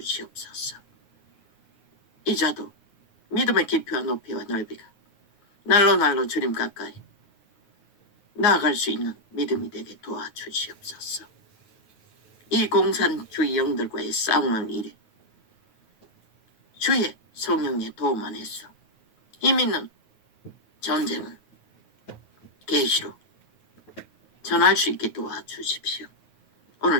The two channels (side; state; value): right; late; 9.4 ms